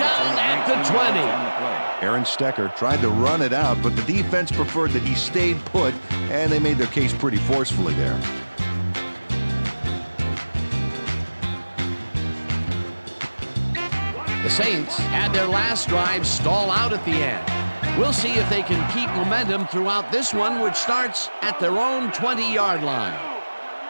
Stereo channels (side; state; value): both; inverted; correlation -1.00